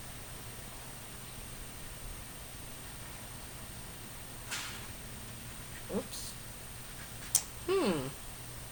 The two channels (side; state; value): both; identical; correlation 1.00